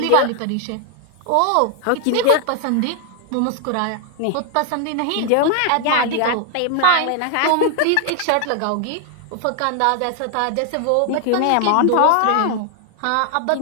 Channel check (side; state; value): both; different; correlation 0.00